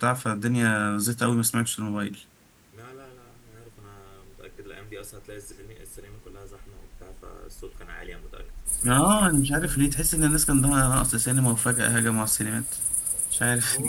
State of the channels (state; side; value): identical; both; correlation 1.00